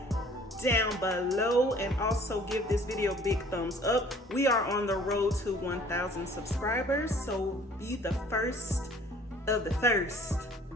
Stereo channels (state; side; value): normal; both; correlation 0.53